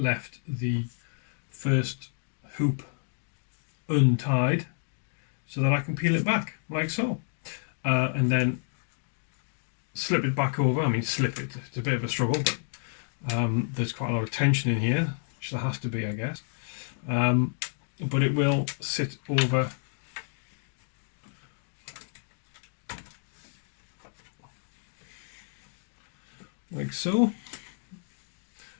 the first hoop untied so that I can peel it back like so, and then slip it back over. I mean, slip it, it's a bit of a struggle, but there's quite a lot of tension in here, which there has to be, I guess, but it will sit over like so,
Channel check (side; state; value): right; silent; digital silence